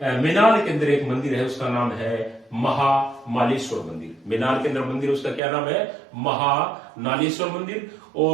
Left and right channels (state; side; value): drops out; left; at 5.4 s